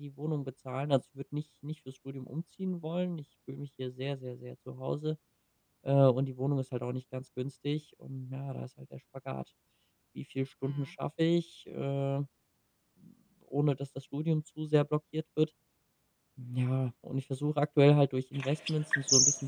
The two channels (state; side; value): identical; both; correlation 1.00